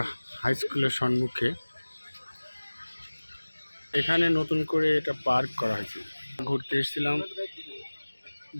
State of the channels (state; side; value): inverted; both; correlation -1.00